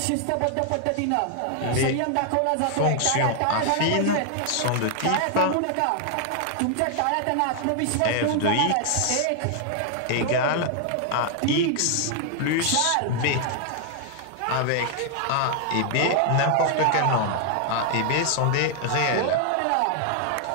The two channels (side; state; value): both; different; correlation 0.00